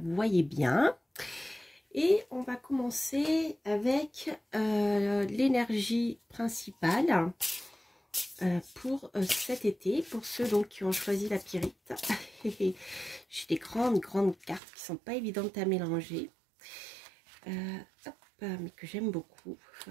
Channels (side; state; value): left; drops out; at 14.6 s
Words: bien. Et on va commencer avec l'énergie principale pour cet été, pour ceux donc qui ont choisi la pyrite. J'ai des grandes cartes qui sont pas évidentes à mélanger, hop, mais que j'aime beaucoup,